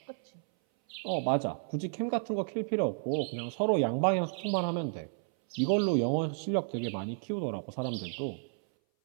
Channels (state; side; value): silent; left; 57 dB below the other